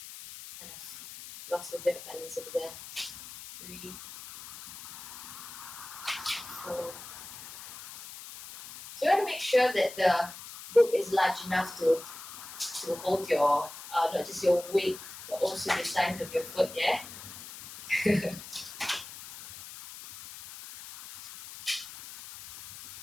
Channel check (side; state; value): left; noise; hiss, 13 dB below the sound